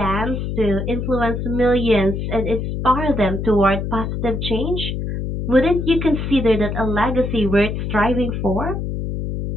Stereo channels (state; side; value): noise; left; hum, 3 dB below the sound